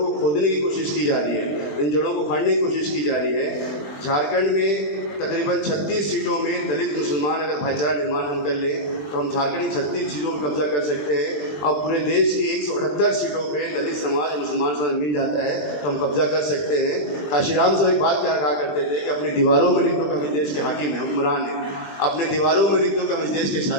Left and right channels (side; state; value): right; late; 20 ms